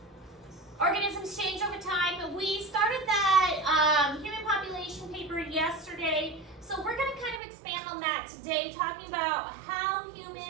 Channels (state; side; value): drops out; left; at 7.4 s